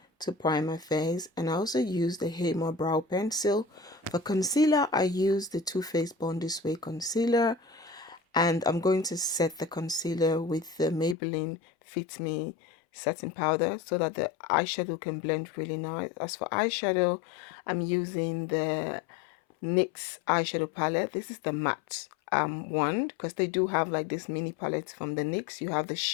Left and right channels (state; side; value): drops out; right; at 11.2 s